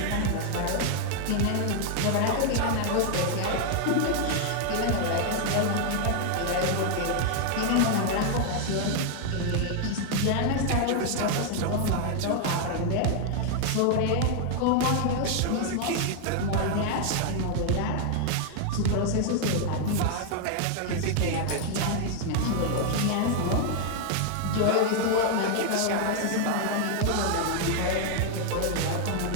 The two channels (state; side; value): different; both; correlation 0.00